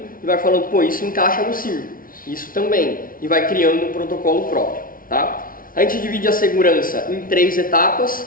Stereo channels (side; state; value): right; late; 0.41 ms